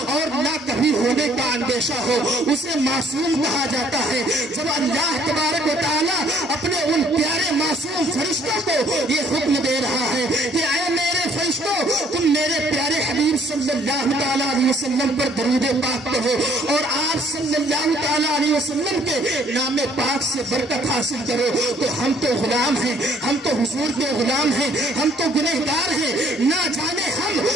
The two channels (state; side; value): normal; both; correlation 0.61